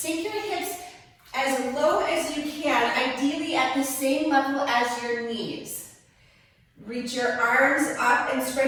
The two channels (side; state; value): both; identical; correlation 1.00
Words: your hips as low as you can, ideally at the same level as your knees. Reach your arms up and